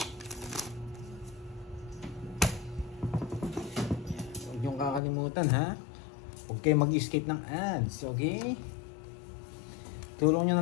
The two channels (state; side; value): drops out; right; at 5.0 s